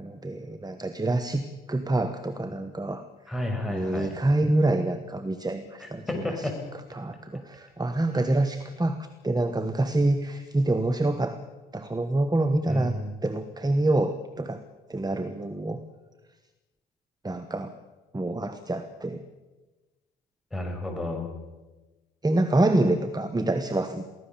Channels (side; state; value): both; normal; correlation 0.89